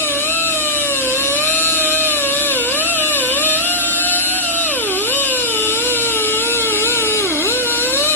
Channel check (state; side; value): normal; both; correlation -0.08